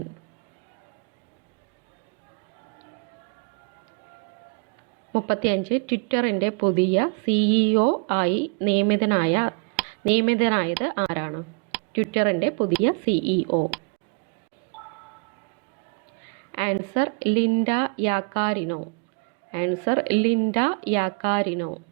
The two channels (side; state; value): left; quieter; 38.0 dB